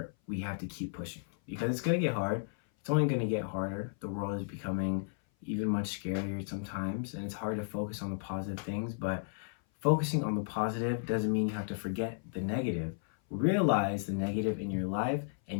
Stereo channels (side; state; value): right; silent; 55 dB below the other